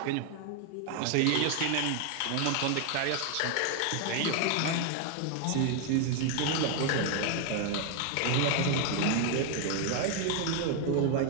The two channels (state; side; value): different; both; correlation 0.01